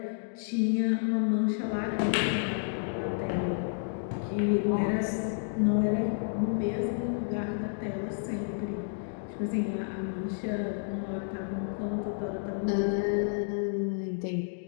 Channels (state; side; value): silent; right; digital silence